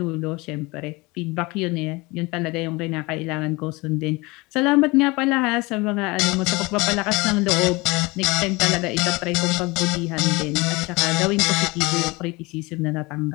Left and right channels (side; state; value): right; quieter; 24.2 dB